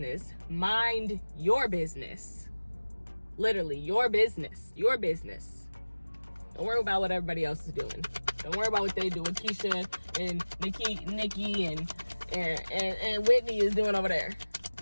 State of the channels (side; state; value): both; inverted; correlation -1.00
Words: Mind your business. Literally, your business. Your business. Don't worry about what everybody else is doing. Don't worry about what they do with Keisha and Nikki and and Whitney is doing over there.